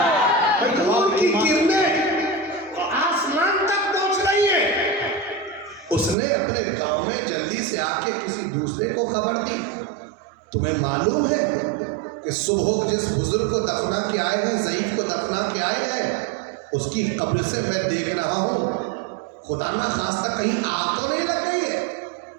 نور کی کرنیں آسمان تک پہنچ رہی ہیں. اس نے اپنے گاؤں میں جلدی سے آ کے کسی دوسرے کو خبر دی. تمہیں معلوم ہے کہ صبح جس بزرگ کو دفنا کے آئے ہیں، ضعیف کو دفنا کے آئے ہیں، اس کی قبر سے میں دیکھ رہا ہوں خدا نہ خواستہ کہیں آگ تو نہیں لگ گئی ہے.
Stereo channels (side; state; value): left; drops out; at 6.2 s